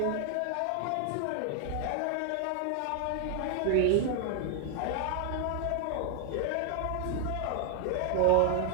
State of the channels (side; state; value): both; different; correlation 0.00